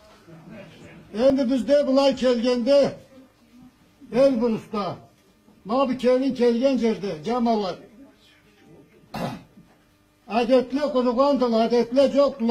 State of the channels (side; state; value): both; identical; correlation 1.00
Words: Endi bizde bulay kelgende Elbrus'ta mabi kelgen yerdi camalar. Adetle kurugandılar, adetle